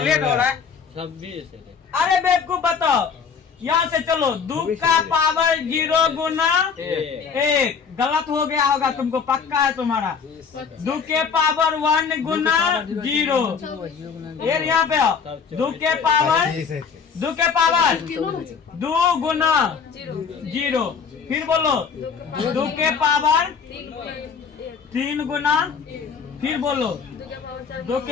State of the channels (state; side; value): quieter; right; 6.2 dB